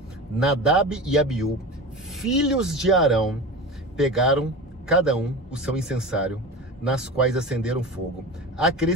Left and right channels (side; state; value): both; normal; correlation 0.30